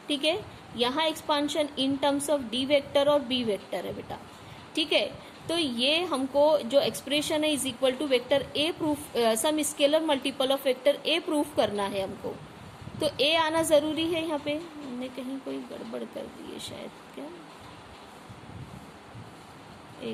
ठीक है, यहाँ expansion in terms of D vector और बी वेक्टर है बेटा। ठीक है, तो ये हमको जो एक्सप्रेशन है is equal to vector A proof, some scalar multiple of vector A proof करना है हमको, तो ए आना जरूरी है। यहाँ पे हमने कहीं कोई गड़बड़ कर दी है शायद, क्या,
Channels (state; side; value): identical; both; correlation 1.00